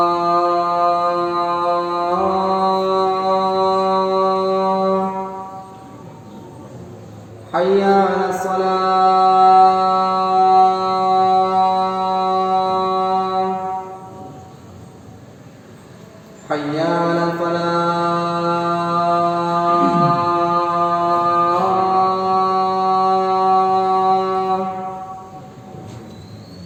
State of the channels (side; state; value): both; identical; correlation 1.00